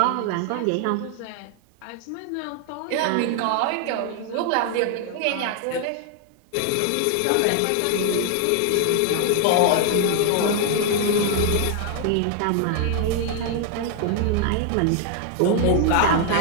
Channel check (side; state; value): both; different; correlation 0.00